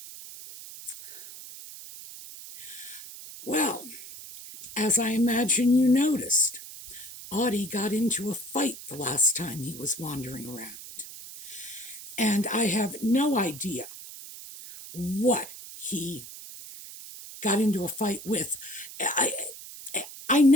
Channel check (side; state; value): right; noise; hiss, 14 dB below the sound